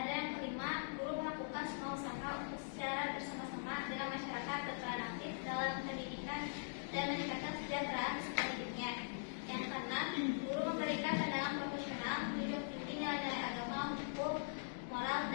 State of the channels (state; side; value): silent; right; digital silence